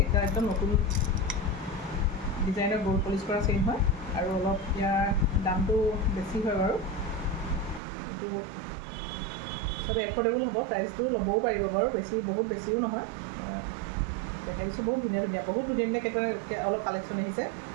এতিয়া একদম নতুন ডিজাইনৰ গ'ল্ড পলিচ কৰা চেইন হয় আৰু অলপ ইয়াৰ দামটো বেছি হয় বাৰু এইটো চব এফৰ্ডেবল হ'ব প্ৰাইচটো ল'বও পাৰিব বাৰু বেছি বহুত বেছিও নহয় দেখাই দিছোঁ বহুত ধুনীয়া ধুনীয়া কেইটামান অলপ কালেকশ্যন আহিছে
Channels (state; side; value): drops out; left; at 7.8 s